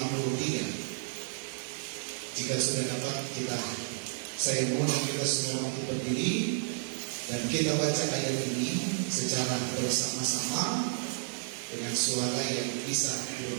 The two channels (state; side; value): silent; left; digital silence